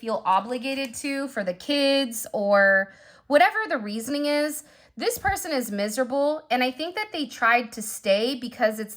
obligated to for the kids or whatever the reasoning is, this person is miserable. And I think that they tried to stay because it's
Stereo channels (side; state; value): both; identical; correlation 1.00